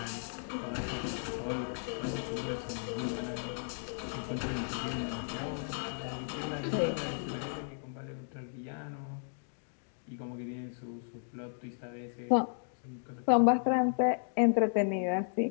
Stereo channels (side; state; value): right; silent; digital silence